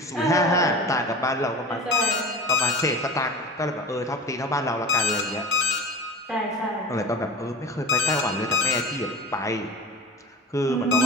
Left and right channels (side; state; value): both; normal; correlation 0.34